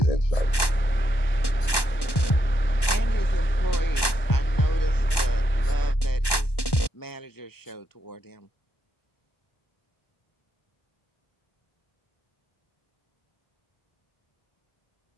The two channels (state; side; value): late; right; 1.1 ms